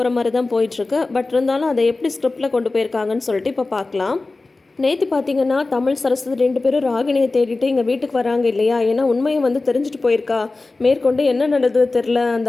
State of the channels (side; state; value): right; quieter; 3.4 dB